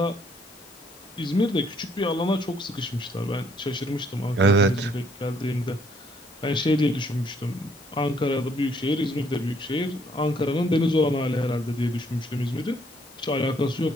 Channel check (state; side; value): noise; left; hiss, 24 dB below the sound